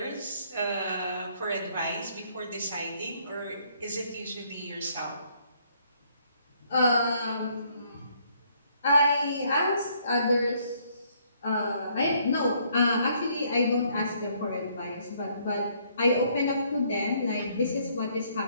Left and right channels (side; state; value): both; inverted; correlation -0.67